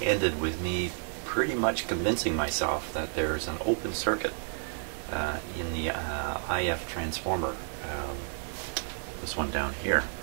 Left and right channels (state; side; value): silent; left; digital silence